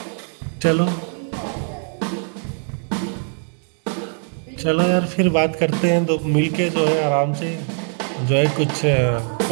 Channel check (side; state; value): left; silent; 56 dB below the other